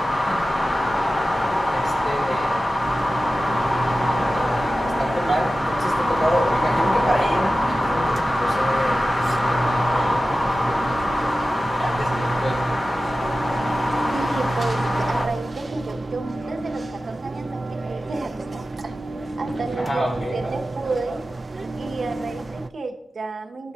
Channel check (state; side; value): normal; both; correlation 0.94